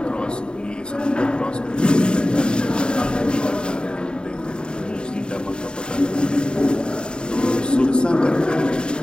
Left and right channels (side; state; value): right; late; 0.050 ms